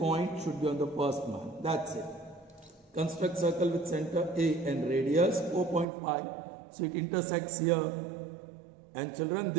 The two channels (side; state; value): left; drops out; at 5.9 s